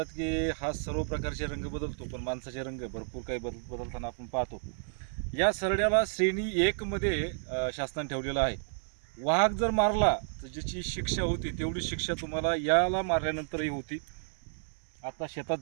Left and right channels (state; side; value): silent; left; 57 dB below the other